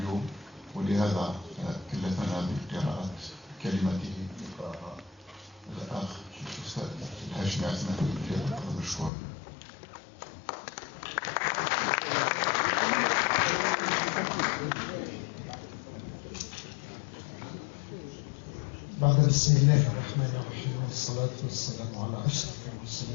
ولهذا كلفنا بقراءة كلمته الأخ الأستاذ الهاشمي عثمان فليتفضل مشكورا. بعد بسم الله الرحمن الرحيم والصلاة والسلام على أشرف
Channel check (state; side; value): drops out; right; at 9.1 s